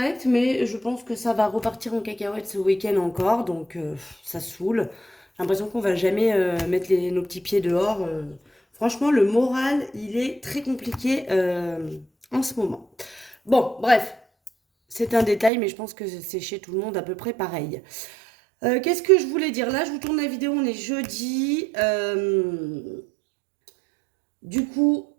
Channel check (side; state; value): left; drops out; at 15.5 s